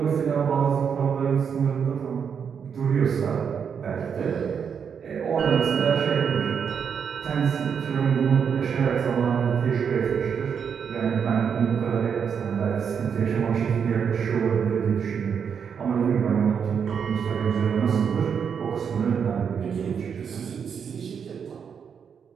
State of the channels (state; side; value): quieter; left; 7.0 dB